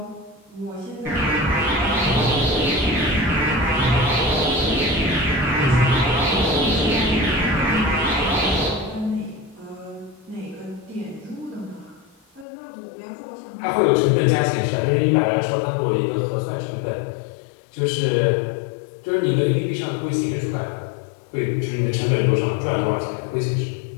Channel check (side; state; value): right; drops out; at 12.5 s